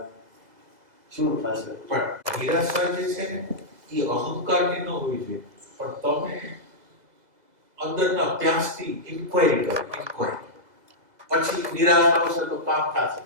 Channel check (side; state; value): left; late; 2.0 ms